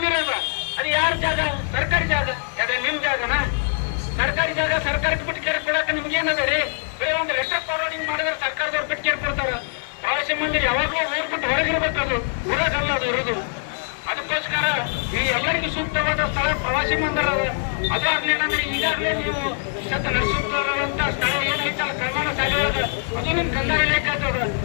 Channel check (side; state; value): right; silent; digital silence